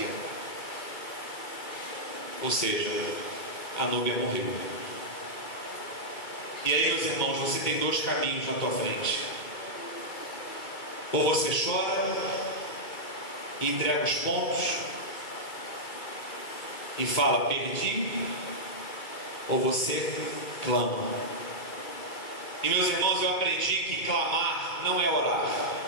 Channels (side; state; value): right; late; 2.2 ms